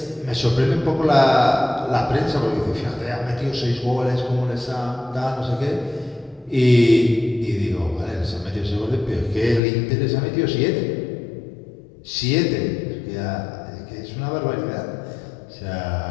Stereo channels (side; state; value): right; drops out; at 9.6 s